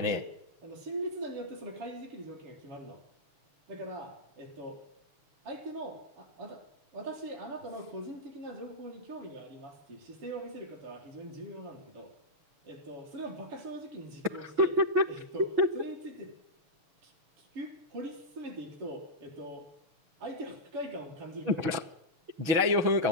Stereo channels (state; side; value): late; left; 6.2 ms